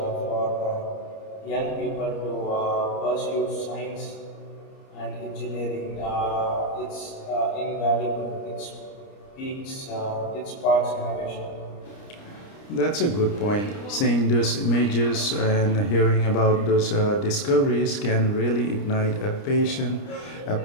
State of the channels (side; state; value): right; late; 30 ms